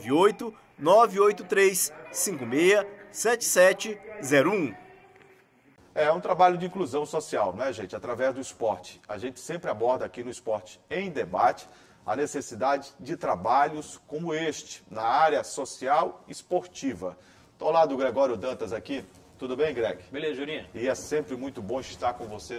É um trabalho de inclusão social, né, gente? Através do esporte. A gente sempre aborda aqui no Esporte em Debate a necessidade de trabalhos como este, na área social esportiva. Estou ao lado do Gregório Dantas aqui. Tudo bem, Greg? Beleza, Jurinha. E é sempre muito bom estar com você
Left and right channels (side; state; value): both; identical; correlation 1.00